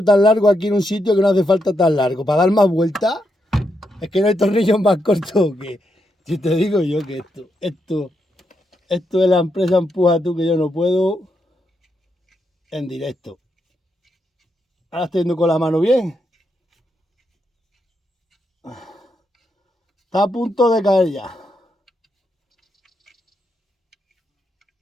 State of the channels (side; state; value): both; normal; correlation 0.81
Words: tan largo aquí en un sitio que no hace falta tan largo? ¿Para dar más vueltas? Es que no hay tornillos más cortos que... Si te digo yo que esto de la empresa Empuja Tú, que yo no puedo en directo. Ahora estoy yendo con la mano bien. Está a punto de caer ya.